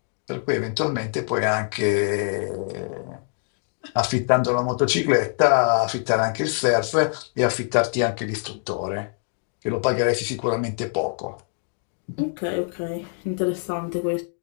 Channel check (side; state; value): right; silent; 62 dB below the other